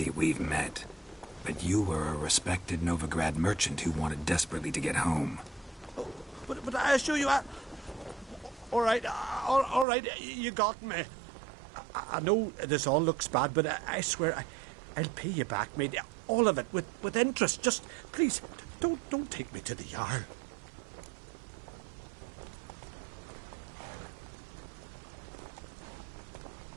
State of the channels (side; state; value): left; drops out; at 9.9 s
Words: we've met. But you were a respected Novigrad merchant who wanted desperately to get home. Oh, but I assure you, all right, you got me. I know this all looks bad, but I swear I'll pay you back, mate. All of it, with interest. Just, please, don't take me to the Jarl.